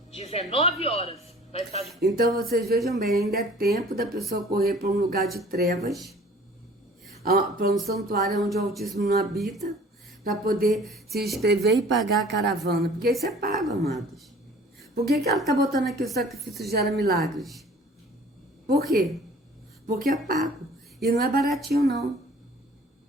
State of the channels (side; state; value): both; normal; correlation 0.49